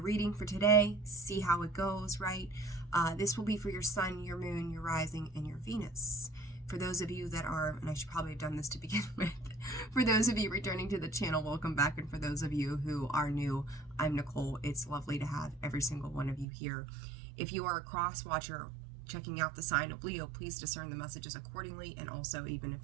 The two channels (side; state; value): left; drops out; at 16.4 s